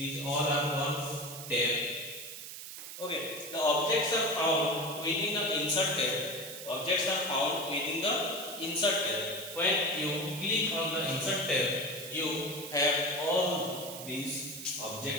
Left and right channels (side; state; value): right; noise; hiss, 10 dB below the sound